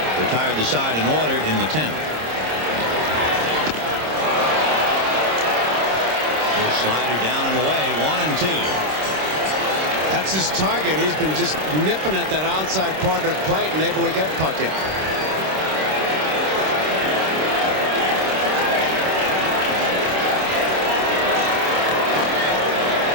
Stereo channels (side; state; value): left; late; 26 ms